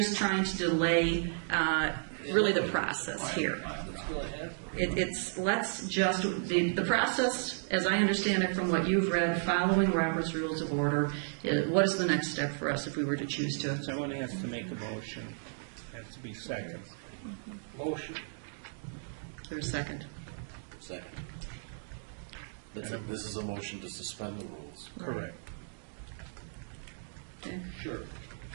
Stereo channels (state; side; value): silent; left; digital silence